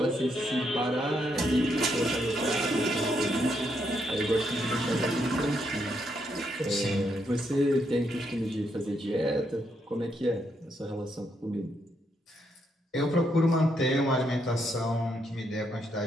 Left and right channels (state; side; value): normal; both; correlation 0.77